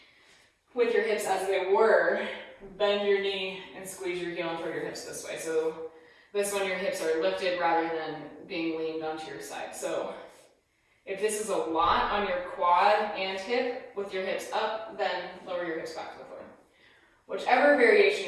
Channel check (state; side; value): identical; both; correlation 1.00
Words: with your hips as they were, bend your knee and squeeze your heel toward your hips this way. So This one, your hips are lifted rather than being leaned onto your side. So if this is a lot on your quad and hip with your hips up, then lower your hips back to the floor. Whichever variation